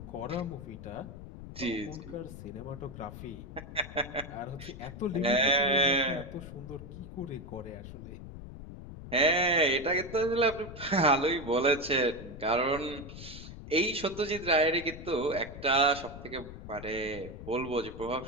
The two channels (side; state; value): left; noise; rumble, 12 dB below the sound